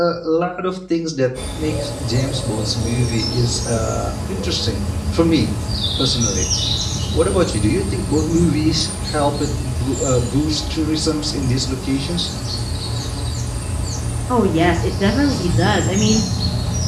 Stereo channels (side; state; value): both; identical; correlation 1.00